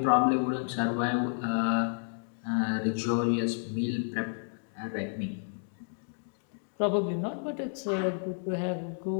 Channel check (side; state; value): right; silent; digital silence